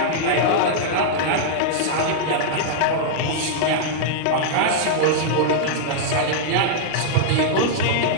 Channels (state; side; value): different; both; correlation -0.02